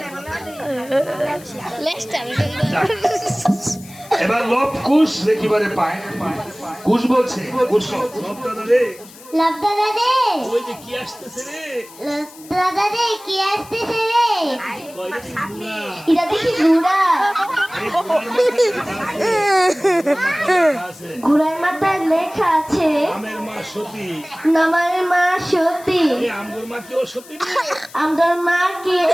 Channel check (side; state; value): left; noise; hiss, 20 dB below the sound